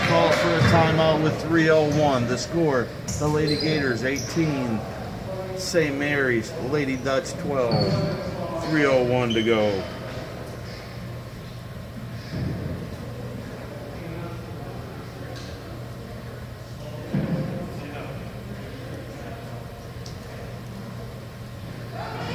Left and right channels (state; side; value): identical; both; correlation 1.00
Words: calls for a timeout with 3:01. The score, the Lady Gators 18, St. Mary's, Lady Dutch 12. 3:01 to go.